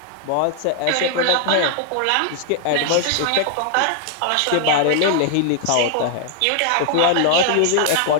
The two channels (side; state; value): both; different; correlation 0.00